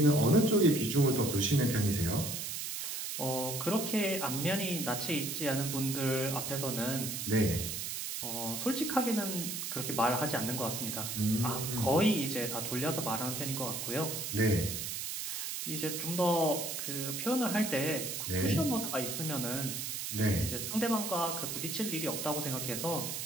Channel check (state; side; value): noise; right; hiss, 4 dB below the sound